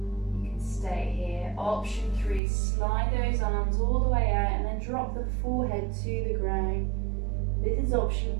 You can stay here. Option 3, slide those arms all the way out and then drop the forehead to the ground. This is option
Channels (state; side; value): drops out; left; at 2.4 s